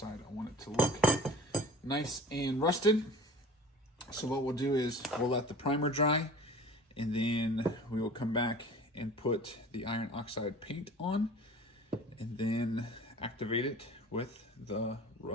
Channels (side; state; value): both; normal; correlation 0.41